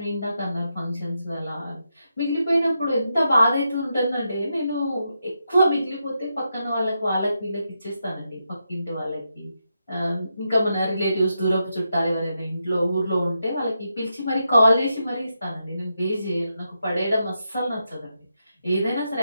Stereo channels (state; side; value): inverted; both; correlation -0.85